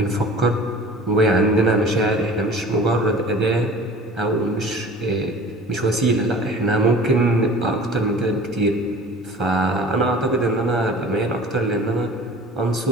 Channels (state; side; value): normal; both; correlation 0.43